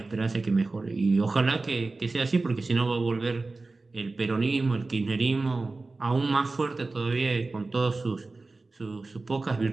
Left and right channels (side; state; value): left; quieter; 3.5 dB